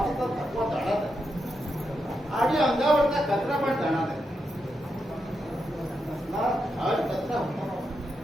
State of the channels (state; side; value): normal; both; correlation 0.84